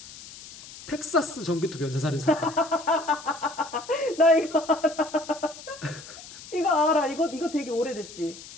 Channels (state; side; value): noise; left; hiss, 16 dB below the sound